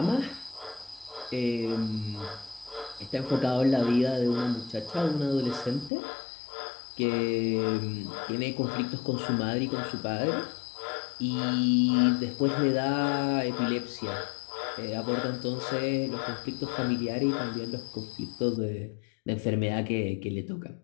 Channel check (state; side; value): drops out; right; at 5.9 s